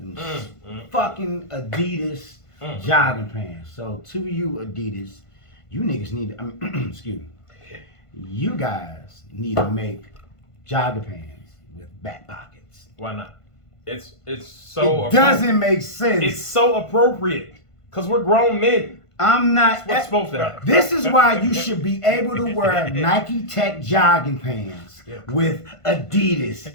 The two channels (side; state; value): right; late; 1.5 ms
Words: fucking Adidas jogging pants. So to you, Adidas, you niggas need to, excuse me, you guys need to make jogging pants with back pockets. Why not? It's so It doesn't make sense. It's so appropriate because we're grown men. I'm not. What's supposed to happen? This is why you should be able to wear Nike Tech jogging pants with Adidas,